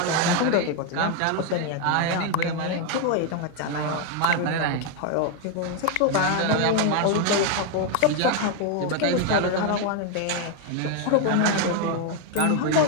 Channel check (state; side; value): different; both; correlation 0.01